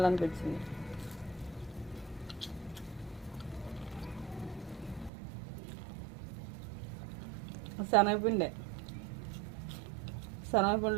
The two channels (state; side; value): drops out; left; at 5.1 s